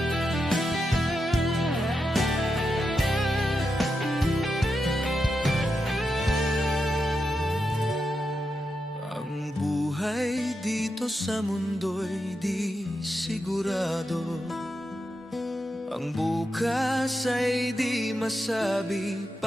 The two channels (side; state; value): both; normal; correlation 0.87